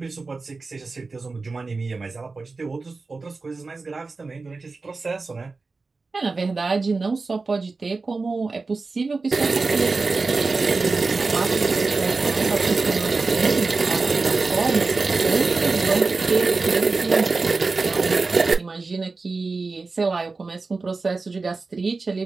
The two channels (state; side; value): quieter; left; 3.9 dB